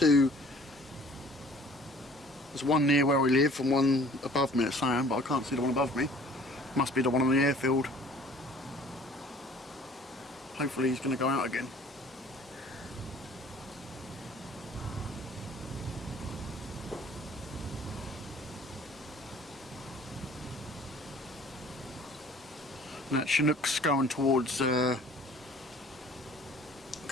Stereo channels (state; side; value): normal; both; correlation 0.52